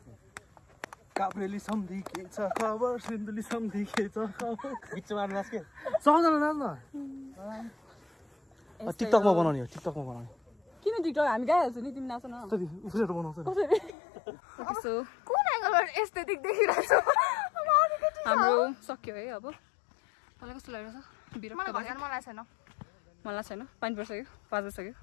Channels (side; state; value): right; drops out; at 14.0 s